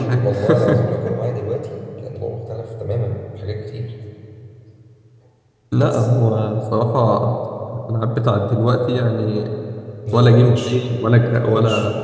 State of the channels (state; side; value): identical; both; correlation 1.00